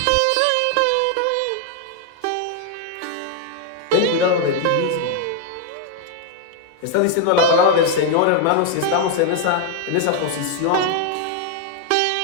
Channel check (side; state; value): both; different; correlation 0.00